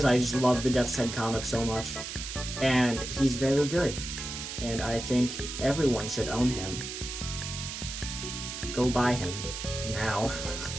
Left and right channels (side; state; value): right; noise; hiss, 7 dB below the sound